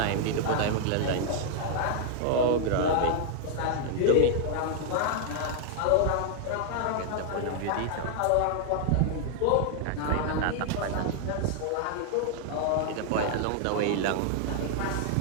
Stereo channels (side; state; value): both; different; correlation 0.00